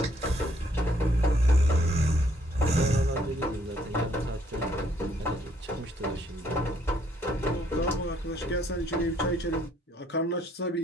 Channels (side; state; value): both; normal; correlation 0.67